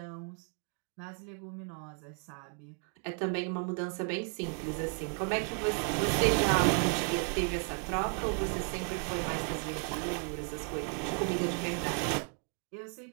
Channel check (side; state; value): left; quieter; 38.0 dB